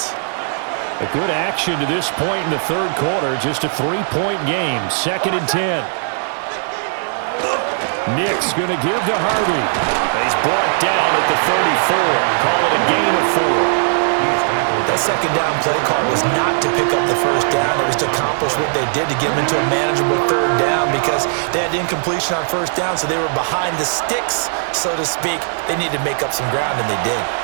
A good action to this point in the 3rd quarter. Just a 3-point game. 2nd and 10. Nick's going to give to Harvey. He's brought down at the 34. Call it a gain of 4. That 2nd down play call was not to pick up the 1st down. It was to accomplish what they did to get them into a manageable 3rd down because they had incompletion on 1st down, so they were behind the sticks, so to speak. They needed to make up some ground, and they did.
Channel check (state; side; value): silent; left; 66 dB below the other